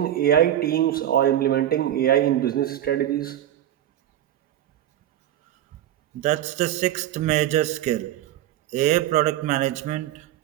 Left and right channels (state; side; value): quieter; left; 11.9 dB